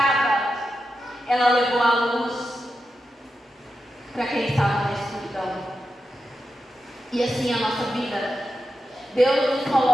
Ela levou a luz para quem estava na escuridão. E assim a nossa vida. Deus nos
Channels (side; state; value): both; normal; correlation 0.89